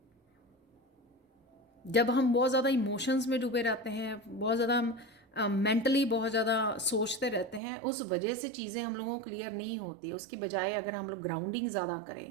जब हम बहुत ज़्यादा इमोशंस में डूबे रहते हैं, बहुत ज़्यादा हम मेंटली बहुत ज़्यादा सोचते रहते हैं, उस वजह से चीज़ें हम लोगों को क्लियर नहीं होती। उसकी बजाय अगर हम लोग ग्राउंडिंग ज़्यादा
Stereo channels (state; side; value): drops out; left; at 7.6 s